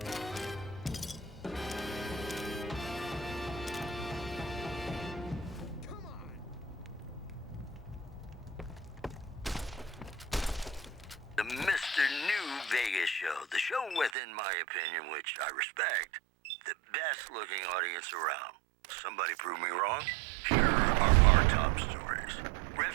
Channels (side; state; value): left; drops out; at 14.1 s